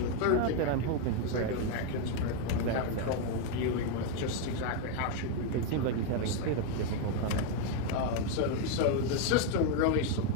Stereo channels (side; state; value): both; different; correlation 0.01